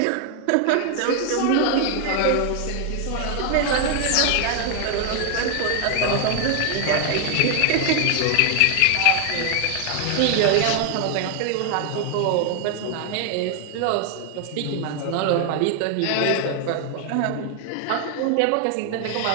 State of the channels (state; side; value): different; both; correlation 0.00